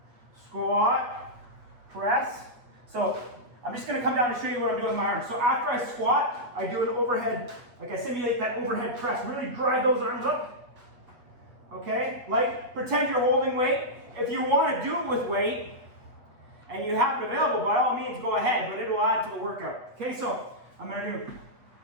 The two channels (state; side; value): late; left; 8.3 ms